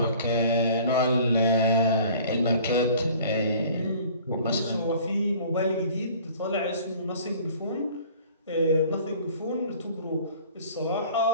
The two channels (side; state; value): both; inverted; correlation -0.49